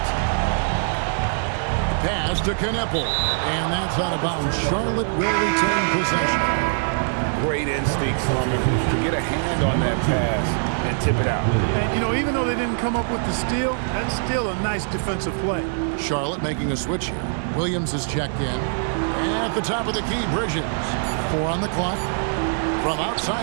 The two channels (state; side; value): silent; left; 63 dB below the other